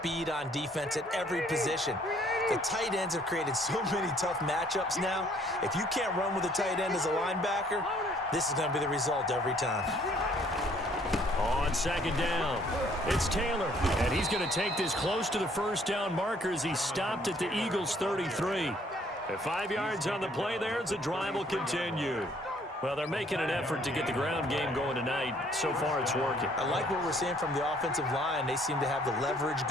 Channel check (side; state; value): both; normal; correlation 0.62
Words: on defense at every position. The tight ends have created so many tough matchups now. If you can't run with a tight end as a linebacker, this is going to be the result every time. On 2nd down, it's Taylor, and He's going to take this close to the first down marker as he stopped at the Eagles' 33. At 5 yards on the play there, as the drive will continue. Well, they're making an effort to get the ground game going tonight. So far, it's working. I like what we're seeing from the offensive line. They seem to have the leverage